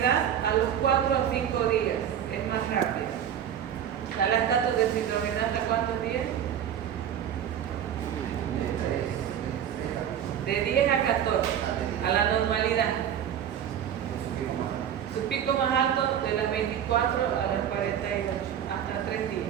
a los 4 a 5 días, es más rápida. La lactato deshidrogenasa, ¿cuántos días? De 10 a 14, a la normalidad. Su pico más alto de las 24 a las 48, hasta 3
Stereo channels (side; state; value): left; quieter; 9.5 dB